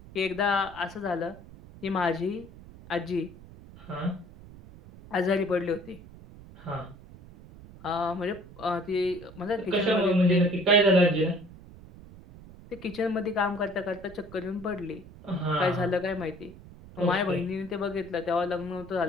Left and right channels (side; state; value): right; noise; rumble, 19 dB below the sound